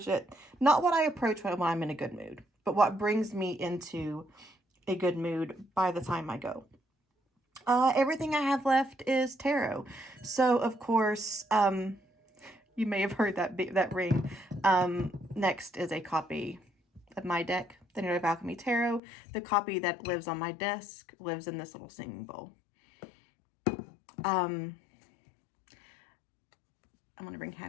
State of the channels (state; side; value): drops out; right; at 19.0 s